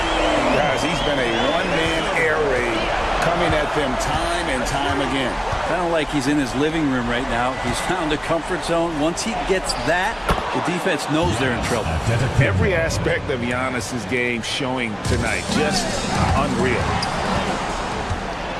Guys, he's been a one-man air raid coming at them time and time again. Kind of like he's in his living room right now. He's found a comfort zone. Once he gets that, the defense knows they're in trouble. Every aspect of Giannis's game showing tonight. Just unreal.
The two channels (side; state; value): both; identical; correlation 1.00